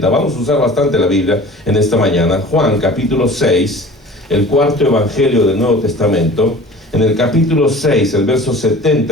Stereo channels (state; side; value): normal; both; correlation 0.43